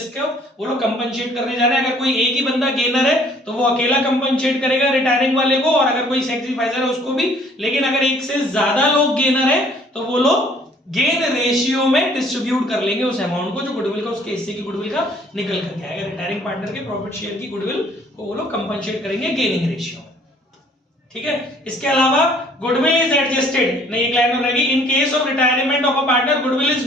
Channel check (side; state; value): both; normal; correlation 0.58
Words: वो लोग कंपनसेट करने जा रहे हैं। अगर कोई एक ही बंदा गेनर है तो वो अकेला कंपनसेट करेगा रिटायरिंग वाले को, और अगर कोई सैक्रिफाइसर है उसको भी। लेकिन अगर एक से ज्यादा लोग गेनर है तो वो लोग गेन रेशियो में डिस्ट्रीब्यूट कर लेंगे उस अमाउंट को, जो गुडविल का उसके हिस्से की गुडविल का निकल करके आएगा। रिटायरिंग पार्टनर के प्रॉफिट शेयर की गुडविल को वो लोग कंपनसेट करेंगे गेनिंग रेशियो। ठीक है, इसके अलावा गुडविल इज एडजस्टेड, नहीं एक लाइन और रहेगी, in case of retirement of a partner goodwill